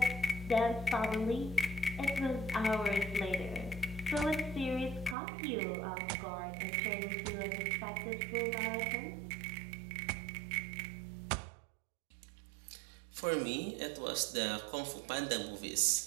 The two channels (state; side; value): drops out; left; at 5.2 s